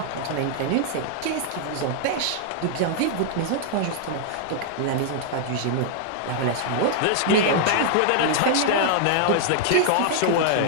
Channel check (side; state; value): both; different; correlation -0.01